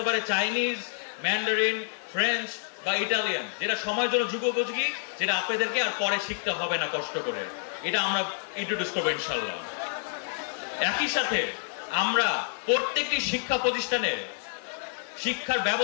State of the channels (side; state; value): right; silent; digital silence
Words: পারে চাইনিজ, ম্যান্ডারিন, ফ্রেঞ্চ বা ইটালিয়ান, যেটা সময়ের জন্য যুগোপযোগী, যেটা আপনাদেরকে আর পরে শিখতে হবে না কষ্ট করে। এটা আমরা ইন্ট্রোডিউস করবো ইনশাল্লাহ। একই সাথে আমরা প্রত্যেকটি শিক্ষা প্রতিষ্ঠানে শিক্ষার